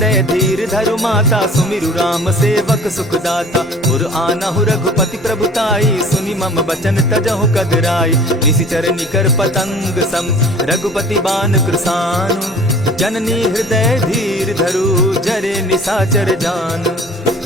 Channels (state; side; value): normal; both; correlation 0.46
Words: धीर धरु माता सुमिरु राम सेवक सुखदाता। उर आनहु रघुपति प्रभुताई सुनि मम बचन तजहु कदराई। निशिचर निकर पतंग सम रघुपति बान कृसानु। जननी हृदय धीर धरु जरे निशाचर जान।